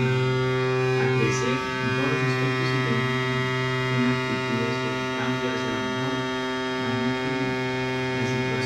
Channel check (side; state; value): both; identical; correlation 1.00